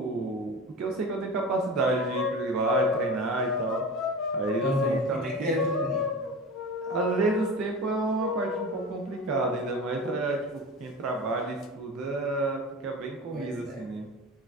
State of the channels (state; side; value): normal; both; correlation 0.31